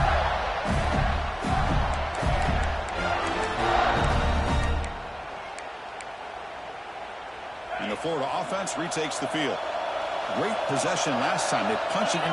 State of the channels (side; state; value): both; identical; correlation 1.00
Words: And the Florida offense retakes the field. Great possession last time. They punch it